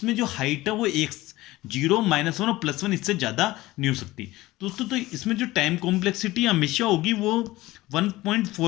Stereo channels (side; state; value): right; quieter; 18.3 dB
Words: जो हाइट है वो 0 -1 और +1, इससे ज़्यादा नहीं हो सकती दोस्तों। तो इसमें जो टाइम कॉम्प्लेक्सिटी हमेशा होगी वो